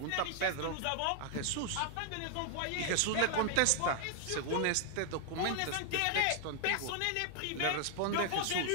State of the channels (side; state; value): both; different; correlation 0.00